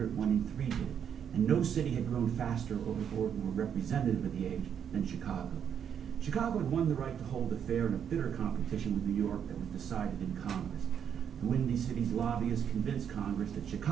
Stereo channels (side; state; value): left; quieter; 8.3 dB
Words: 1 in 3 did. And no city had grown faster or more representative of the age than Chicago. Chicago had won the right to hold a fair in a bitter competition with New York that was decided in Congress. The Windy City's lobbyists convinced Congress that